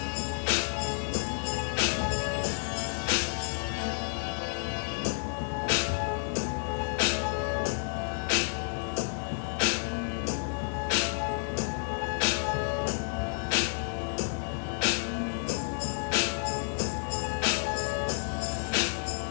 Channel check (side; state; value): right; silent; 56 dB below the other